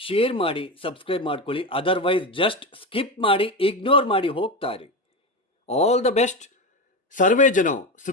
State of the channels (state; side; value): normal; both; correlation 0.19